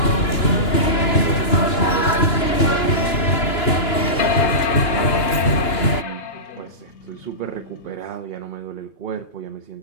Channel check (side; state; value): right; late; 2.9 ms